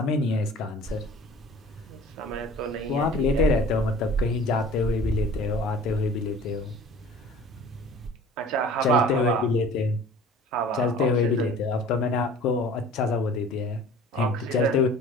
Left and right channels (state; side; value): normal; both; correlation 0.45